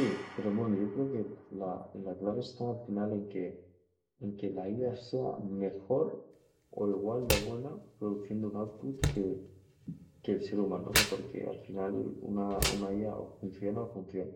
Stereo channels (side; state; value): both; identical; correlation 1.00